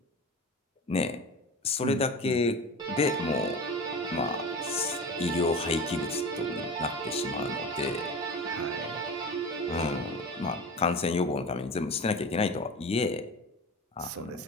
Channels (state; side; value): normal; both; correlation 0.32